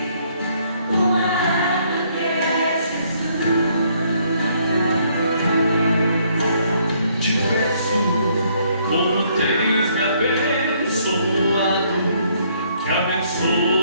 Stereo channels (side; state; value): both; inverted; correlation -0.68